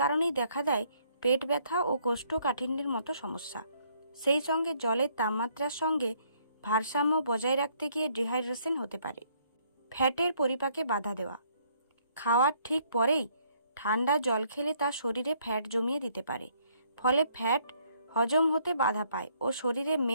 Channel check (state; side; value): inverted; both; correlation -0.67